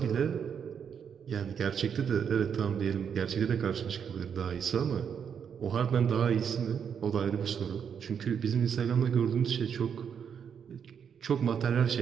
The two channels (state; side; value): quieter; left; 7.5 dB